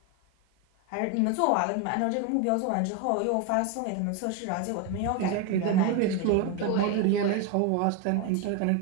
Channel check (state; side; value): different; both; correlation 0.02